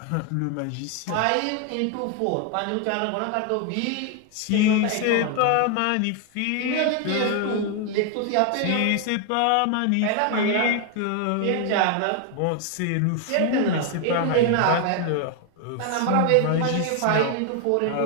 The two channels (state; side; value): different; both; correlation 0.01